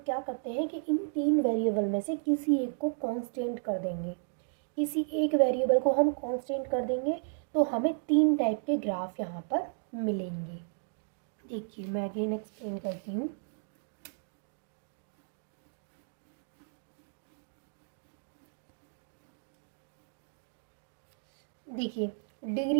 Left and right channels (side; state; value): left; silent; digital silence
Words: करते हैं कि इन तीन वेरिएबल में से किसी एक को कांस्टेंट कर देंगे, किसी एक वेरिएबल को हम कांस्टेंट कर देंगे तो हमें तीन टाइप के ग्राफ यहाँ पर मिलेंगे। देखिए मैं अगेन एक्सप्लेन करती हूँ। देखिए